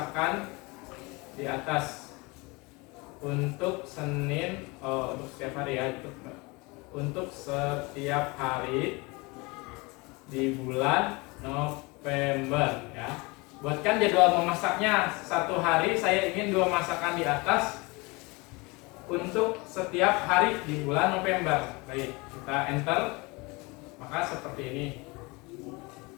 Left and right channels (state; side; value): quieter; right; 26.0 dB